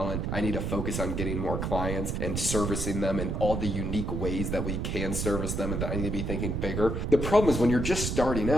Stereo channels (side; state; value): right; noise; rumble, 1 dB below the sound